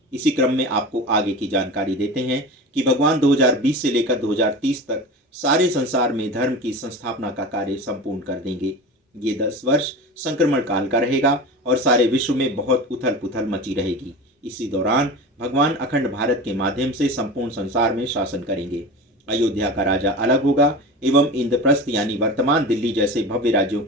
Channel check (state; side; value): normal; both; correlation 0.31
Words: इसी क्रम में आपको आगे की जानकारी देते हैं कि भगवान 2020 से लेकर 2030 तक सारे संसार में धर्म की संस्थापना का कार्य संपूर्ण कर देंगे। ये 10 वर्ष संक्रमण काल का रहेगा और सारे विश्व में बहुत उथल पुथल मची रहेगी। इसी दौरान भगवान अखंड भारत के माध्यम से संपूर्ण संसार में शासन करेंगे। अयोध्या का राजा अलग होगा एवं इंद्रप्रस्थ यानी वर्तमान दिल्ली जैसे भव्य राज्यों